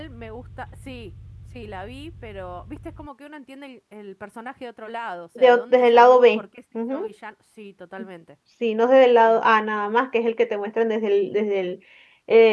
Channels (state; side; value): identical; both; correlation 1.00